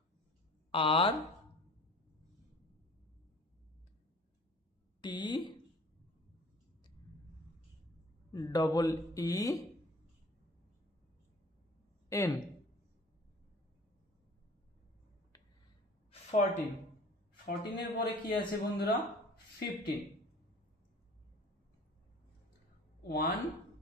R T double E N, 14। 14 এর পরে কি আছে বন্ধুরা? 15। 1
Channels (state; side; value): normal; both; correlation 0.46